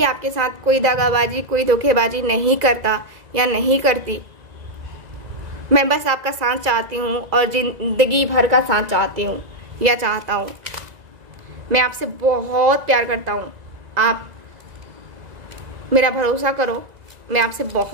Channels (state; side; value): late; left; 2.0 ms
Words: आपके साथ कोई दगाबाजी, कोई धोखेबाजी नहीं करता या नहीं करती। मैं बस आपका साथ चाहती हूँ और जिंदगी भर का साथ चाहती हूँ या चाहता हूँ। मैं आपसे बहुत प्यार करता हूँ, आप मेरा भरोसा करो, मैं आपसे